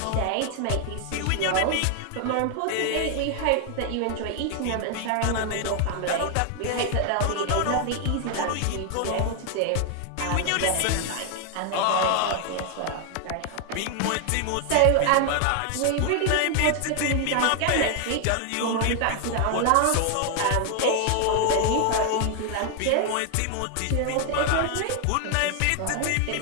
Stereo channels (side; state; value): both; different; correlation 0.00